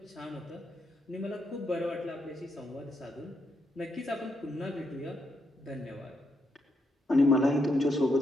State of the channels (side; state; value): both; normal; correlation 0.80